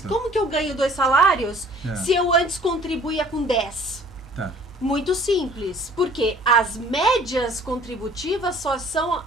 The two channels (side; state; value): both; normal; correlation 0.53